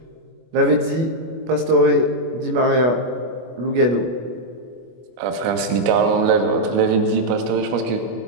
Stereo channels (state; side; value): late; left; 25 ms